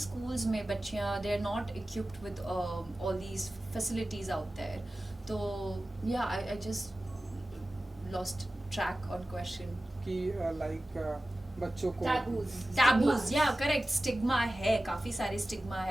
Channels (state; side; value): normal; both; correlation 0.95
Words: में बच्चियाँ they are not equipped with all these facilities out there. तो या I just lost track on question कि like बच्चों को टैबूज, या करेक्ट, स्टिग्मा है, काफ़ी सारे स्टिग्मा